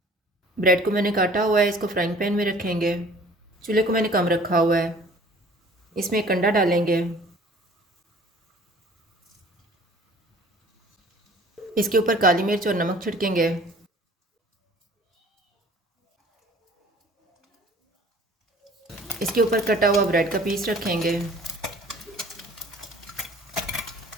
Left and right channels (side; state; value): both; normal; correlation 0.50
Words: ब्रेड को मैंने काटा हुआ है, इसको फ्राइंग पैन में रखेंगे। चूल्हे को मैंने कम रखा हुआ है। इसमें एक अंडा डालेंगे। इसके ऊपर काली मिर्च और नमक छिड़केंगे। इसके ऊपर कटा हुआ ब्रेड का पीस रखेंगे।